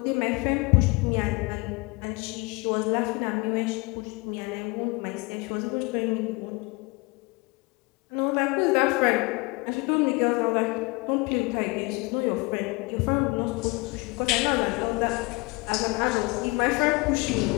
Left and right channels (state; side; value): quieter; right; 26.3 dB